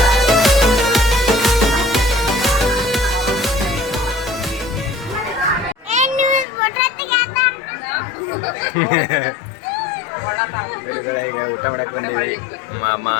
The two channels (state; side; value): drops out; right; at 6.5 s